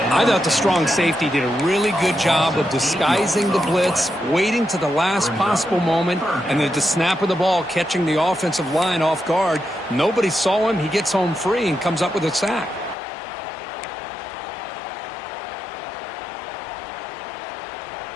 I thought the strong safety did a really good job of disguising the blitz, waiting to the last possible moment, and then at the snap of the ball, catching the offensive line off guard. Nobody saw him. He gets home free and comes up with a sack.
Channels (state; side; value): drops out; right; at 13.0 s